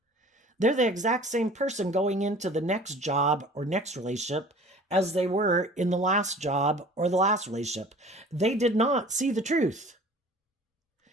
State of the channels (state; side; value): normal; both; correlation 0.46